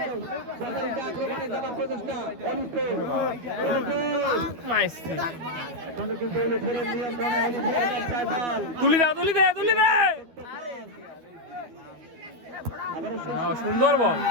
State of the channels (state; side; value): late; left; 12 ms